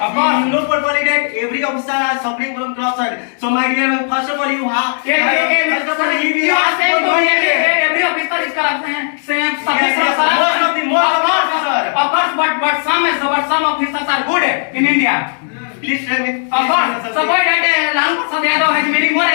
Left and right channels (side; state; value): right; silent; 67 dB below the other